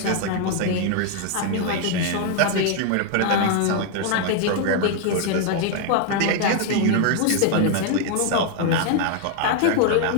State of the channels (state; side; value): different; both; correlation 0.00